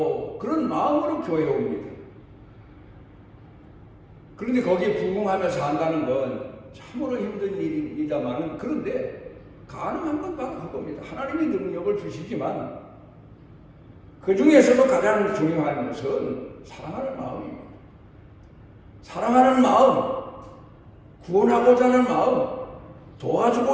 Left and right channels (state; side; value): identical; both; correlation 1.00